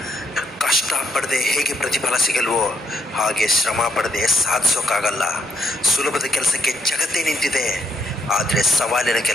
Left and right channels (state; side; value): normal; both; correlation 0.76